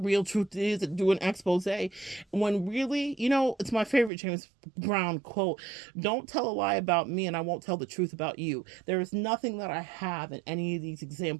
truth is, and do an expose. When really, it's my favorite James Brown quote: don't tell a lie about me and I won't tell the truth about you. There is nothing that I have in any of these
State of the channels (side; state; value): left; drops out; at 4.1 s